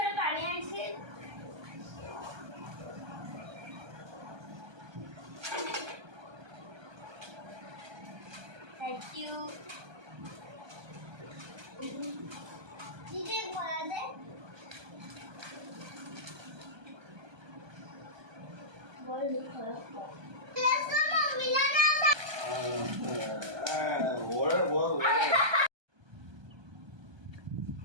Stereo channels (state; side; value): late; left; 1.3 ms